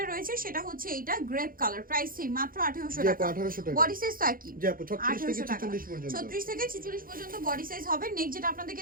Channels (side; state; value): left; late; 0.41 ms